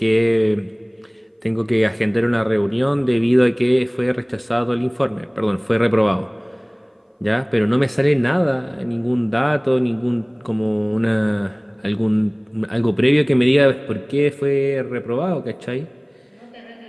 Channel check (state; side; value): identical; both; correlation 1.00